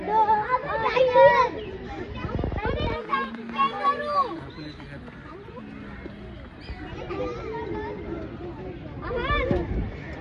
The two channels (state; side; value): identical; both; correlation 1.00